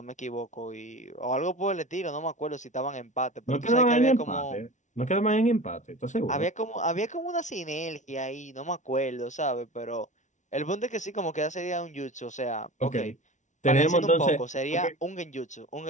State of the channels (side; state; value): right; late; 0.36 ms